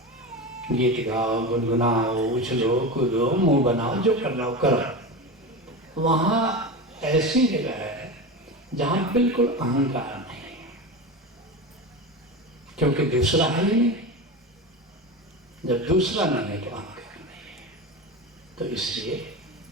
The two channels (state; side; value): normal; both; correlation 0.24